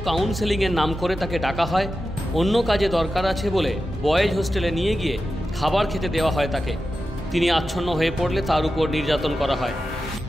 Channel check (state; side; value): normal; both; correlation 0.92